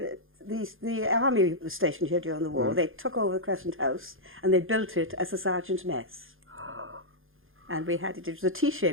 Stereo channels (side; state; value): left; late; 0.59 ms